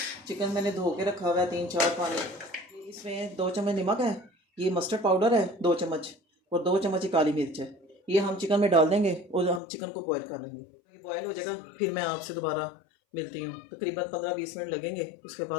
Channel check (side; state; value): right; drops out; at 9.6 s